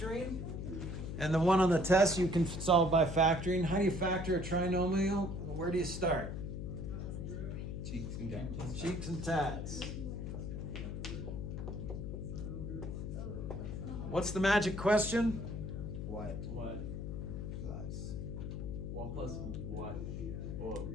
And the one on the test, you can solve by factoring. How do you factor a trinomial? Where do you start? cheeks and tats. Cheeks and tats. What's the magic question? What? What? Plus. 1 plus what? Or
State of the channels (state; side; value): noise; left; hum, 5 dB below the sound